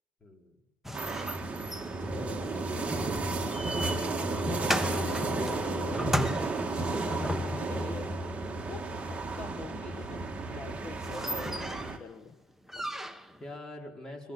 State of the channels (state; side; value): normal; both; correlation 0.74